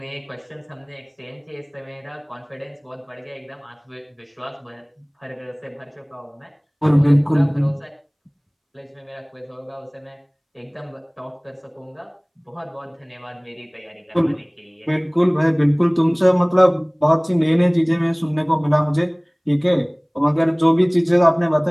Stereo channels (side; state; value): both; identical; correlation 1.00